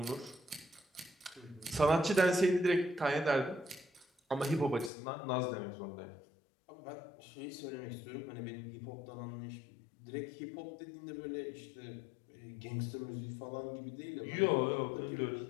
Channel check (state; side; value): drops out; right; at 4.9 s